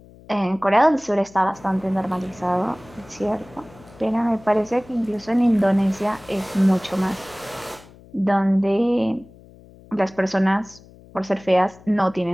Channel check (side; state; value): left; noise; hum, 23 dB below the sound